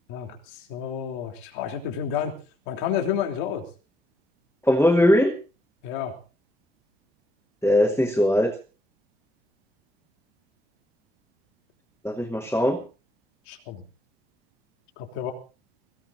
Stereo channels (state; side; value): normal; both; correlation 0.76